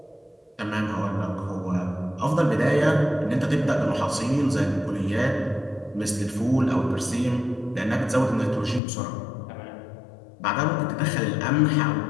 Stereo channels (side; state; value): right; drops out; at 8.8 s